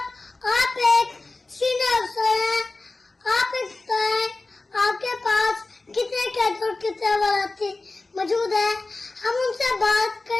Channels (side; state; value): right; quieter; 3.3 dB